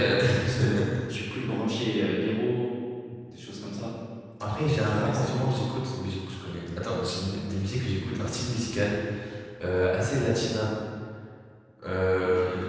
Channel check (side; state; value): both; identical; correlation 1.00